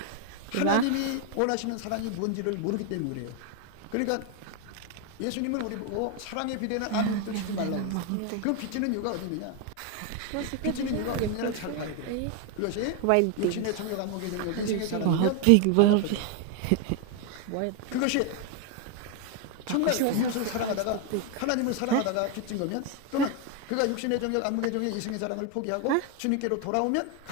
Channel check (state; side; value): different; both; correlation 0.01